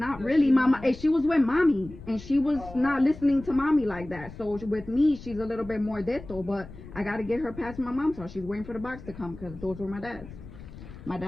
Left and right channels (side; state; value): left; noise; rumble, 16 dB below the sound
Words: really, mama. She was with mommy, and she was not listening to mommy like that. So with me, she's a little bit more deto, but I gotta get her past my mom's house. She's waiting for the box to come because those were my dad's. My